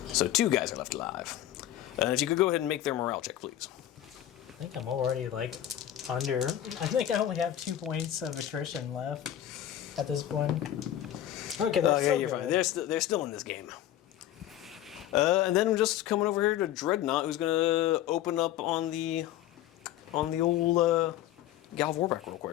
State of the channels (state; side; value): quieter; right; 12.2 dB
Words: So 2 guys are left alive. If you could go ahead and make their morale check, please. I think I'm already like under. I think I only have 2 points of attrition left at this point. Okay, that's You're fine. They're still in this game. And then I'm just coming over here to Dreadnought, who's gonna open up on the old Galv Warback real